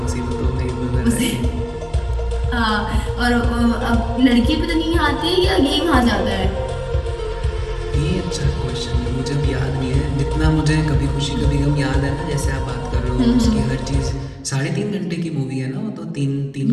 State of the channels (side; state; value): both; identical; correlation 1.00